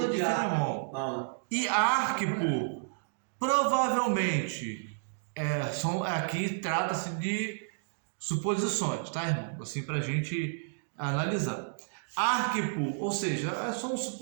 de Filemão. Não. E Arquipo, provavelmente, aqui trata-se de suposições, tá, irmão? Assim, para a gente analisar. Arquipo, ou seja, são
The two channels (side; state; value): left; silent; digital silence